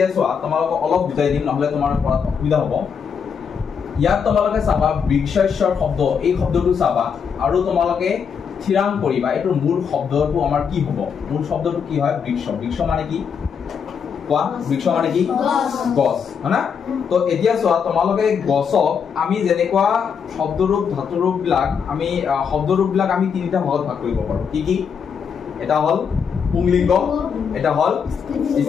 চোৱা তোমালোকক অলপ বুজাই দিম নহলে তোমাৰ পঢ়াত অসুবিধা হ'ব ইয়াত তোমালোকে চাবা বৃক্ষস্যৰ শব্দ এই শব্দটো চাবা আৰু তোমালোকে থিৰাং কৰিবা এটোৰ মূল শব্দটো আমাৰ কি হ'ব মূল শব্দটো কি হয় বৃক্ষ বৃক্ষ মানে কি কোৱা বৃক্ষ মানে কি গছ হনা তো এতিয়া চোৱা তোমালোকে গছক আমি যেনেকুৱা শব্দৰূপ ধাতুৰূপ বিলাক আমি শব্দৰূপ বিলাক আমি তিনিটা ভাগত ভাগ কৰিব পাৰো কি কি এটা হল পুংলিংগ এটা হল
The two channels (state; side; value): quieter; right; 6.7 dB